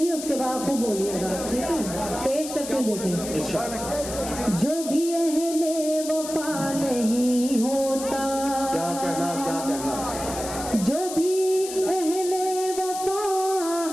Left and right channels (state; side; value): noise; left; hiss, 9 dB below the sound